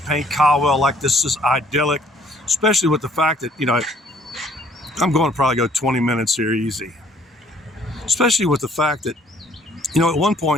Caldwell like this is idyllic, especially with the fact that, I'm going to probably go 20 minutes here easy. Especially with the fact that, at one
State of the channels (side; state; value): both; normal; correlation 0.61